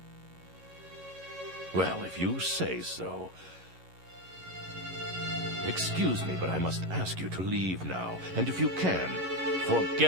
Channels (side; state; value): left; late; 11 ms